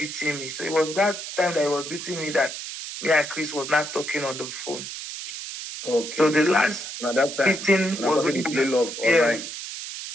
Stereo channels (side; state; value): right; noise; hiss, 8 dB below the sound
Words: me. So it was that time that he was beating me that me and Chris was not talking on the phone. Okay. So the last beating was when you play love online.